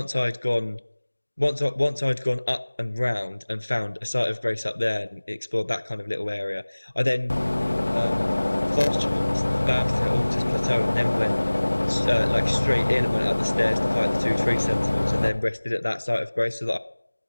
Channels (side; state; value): both; inverted; correlation -1.00